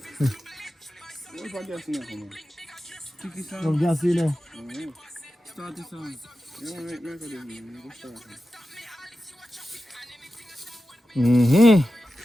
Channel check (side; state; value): both; normal; correlation 0.92